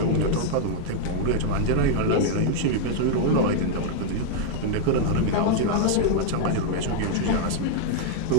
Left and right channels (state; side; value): different; both; correlation -0.01